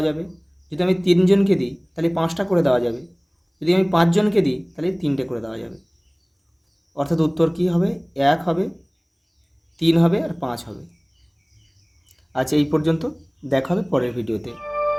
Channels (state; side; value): identical; both; correlation 1.00